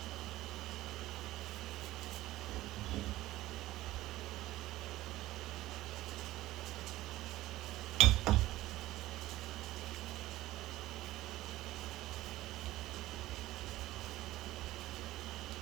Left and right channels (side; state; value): left; quieter; 16.2 dB